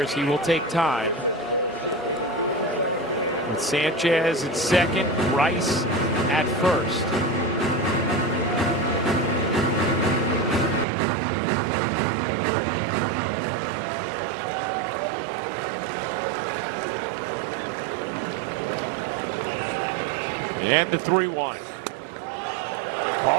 as he will take time. With Sanchez at second, Rice at first. And the 3-1.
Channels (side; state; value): left; drops out; at 10.9 s